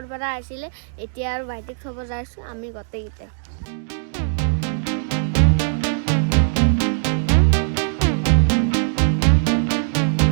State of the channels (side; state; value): left; silent; digital silence